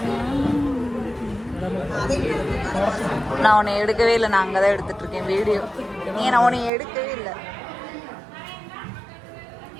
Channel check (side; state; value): left; drops out; at 6.7 s